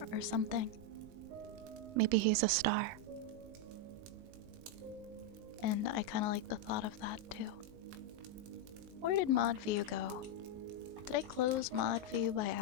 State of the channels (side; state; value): left; late; 20 ms